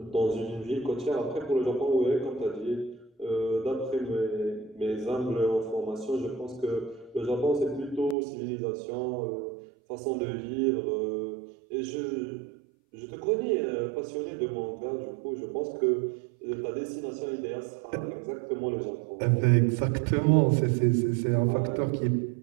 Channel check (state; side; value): drops out; left; at 8.2 s